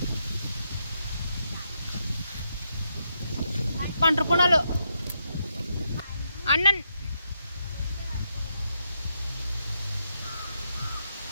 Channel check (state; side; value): inverted; both; correlation -0.81